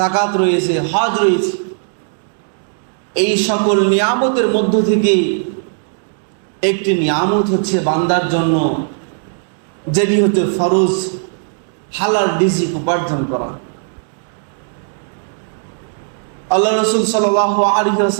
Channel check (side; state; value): left; silent; digital silence